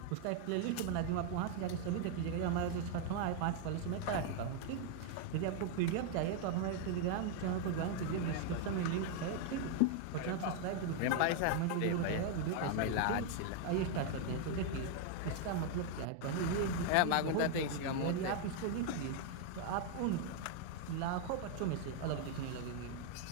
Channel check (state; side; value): different; both; correlation 0.00